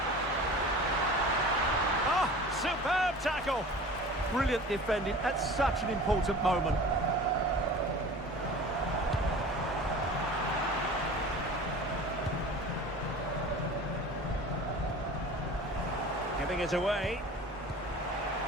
Oh, superb tackle. Brilliant defending at such an important moment. Giving it away.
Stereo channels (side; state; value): both; normal; correlation 0.40